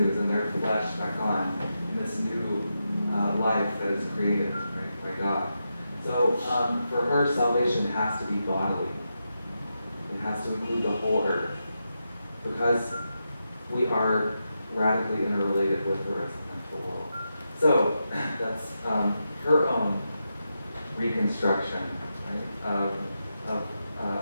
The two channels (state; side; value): inverted; both; correlation -0.87